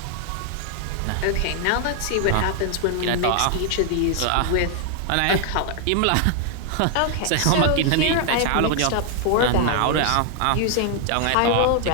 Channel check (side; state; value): both; different; correlation 0.00